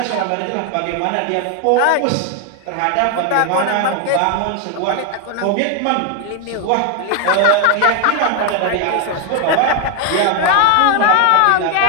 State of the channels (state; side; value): different; both; correlation 0.01